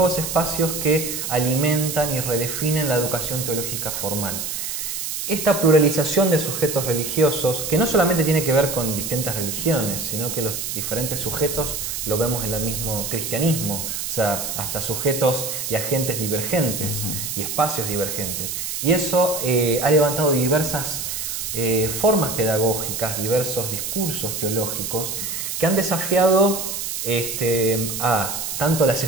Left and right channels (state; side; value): noise; right; hiss, 4 dB below the sound